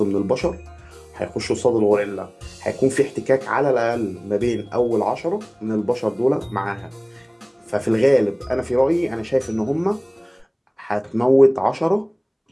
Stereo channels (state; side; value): identical; both; correlation 1.00